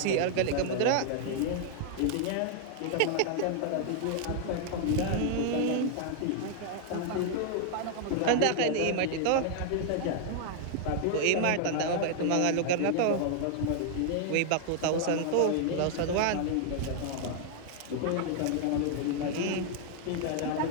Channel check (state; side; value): different; both; correlation -0.01